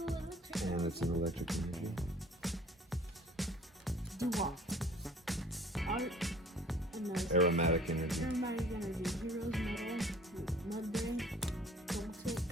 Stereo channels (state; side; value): normal; both; correlation 0.51